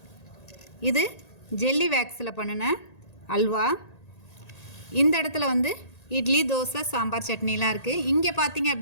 இது ஜெல்லி வேக்ஸில் பண்ணின அல்வா. இந்த இடத்துல வந்து இட்லி, தோசை, சாம்பார், சட்னிலாம் இருக்குது. இங்கே பார்த்தீங்க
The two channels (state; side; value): late; right; 1.8 ms